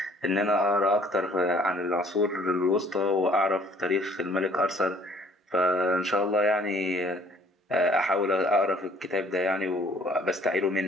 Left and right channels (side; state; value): both; normal; correlation 0.57